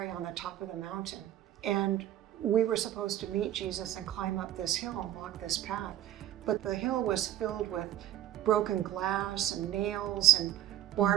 on the top of the mountain. And we were supposed to meet Jesus and climb up this hill and walk this path. But the hill was filled with broken glass and nails and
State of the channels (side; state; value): left; quieter; 12.6 dB